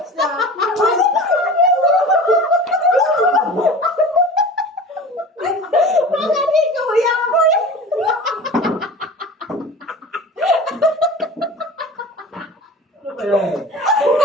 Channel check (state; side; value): normal; both; correlation 0.37